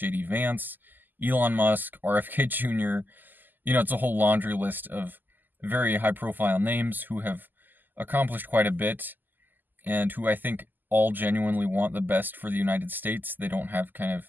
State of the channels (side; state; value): left; late; 0.088 ms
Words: Vance, Elon Musk, RFK Jr., it's a whole laundry list of very high-profile names who have accomplished quite a bit and who I think all genuinely want the best for the United States. They don't have kind